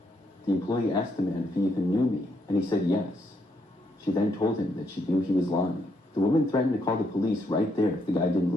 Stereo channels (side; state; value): both; normal; correlation 0.76